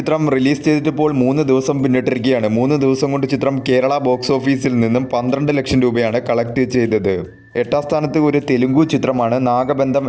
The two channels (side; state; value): both; identical; correlation 1.00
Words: റിലീസ് ചെയ്തിട്ടിപ്പോൾ 3 ദിവസം പിന്നിട്ടിരിക്കുകയാണ്. 3 ദിവസം കൊണ്ട് ചിത്രം കേരള ബോക്സ് ഓഫീസിൽ നിന്നും 12 ലക്ഷം രൂപയാണ് കളക്ട് ചെയ്തത്. 8ാം സ്ഥാനത്ത് ഒരു തെലുങ്കു ചിത്രമാണ് നാഗബന്ധം